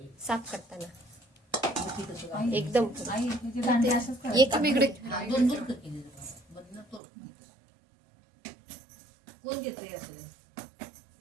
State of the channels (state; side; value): drops out; left; at 7.0 s